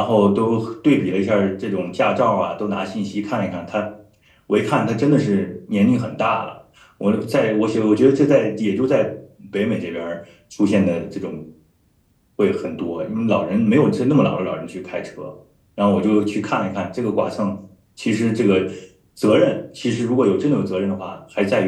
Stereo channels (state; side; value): identical; both; correlation 1.00